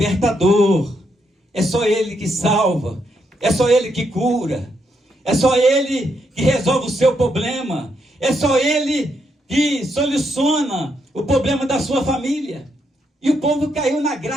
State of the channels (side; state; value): both; normal; correlation 0.78